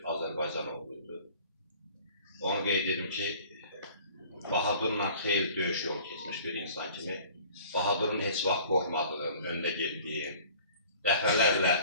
Azərbaycan oğluydu. Onu qeyd edim ki, Bahadurla xeyli döyüş yolu keçmiş bir insan kimi Bahadurun heç vaxt qorxmadığım, öndə getdiyim, dəfələrlə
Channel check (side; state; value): both; inverted; correlation -0.49